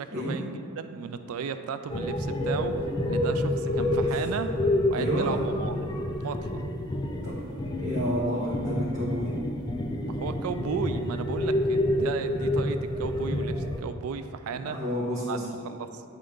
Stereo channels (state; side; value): normal; both; correlation 0.54